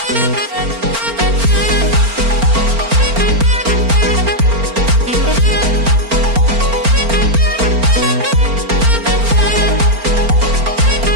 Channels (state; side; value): late; left; 4.4 ms